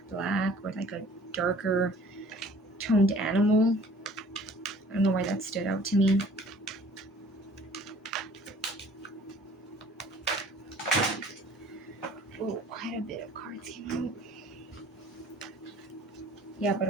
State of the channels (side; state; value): both; normal; correlation 0.51